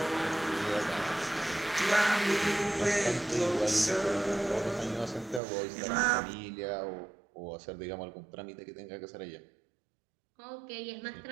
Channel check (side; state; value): left; drops out; at 5.4 s